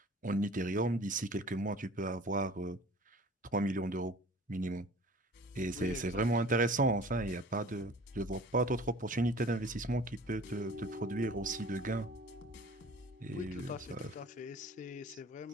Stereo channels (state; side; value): normal; both; correlation 0.45